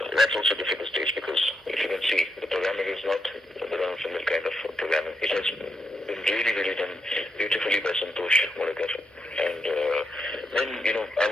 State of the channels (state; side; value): normal; both; correlation 0.81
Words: that's also a difficult stage because if you can see, the programming is not the run-of-the-mill kind of programming. It has been really, really done beautifully by Santosh Modagar. And then,